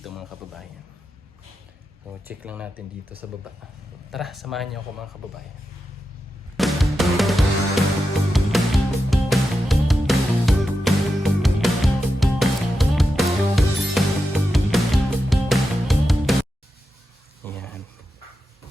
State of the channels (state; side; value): normal; both; correlation 0.89